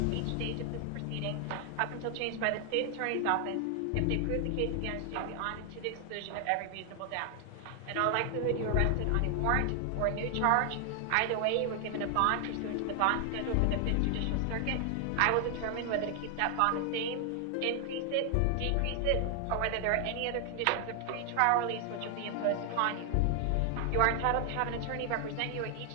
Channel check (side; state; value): both; different; correlation 0.00